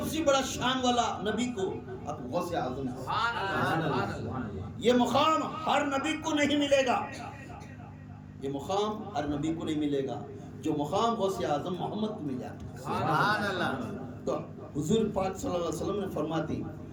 سے بڑا شان والا نبی کو غوث اعظم یہ مقام ہر نبی کو نہیں ملے گا یہ مقام ہر نبی کو نہیں ملے گا جو مقام غوث اعظم محمد کو مل جاتا تو حضور پاک صلی اللہ علیہ وسلم نے فرماتی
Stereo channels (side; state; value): both; identical; correlation 1.00